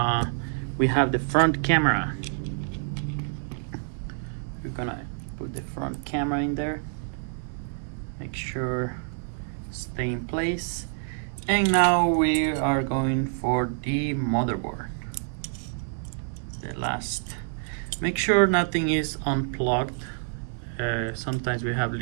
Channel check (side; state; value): left; silent; digital silence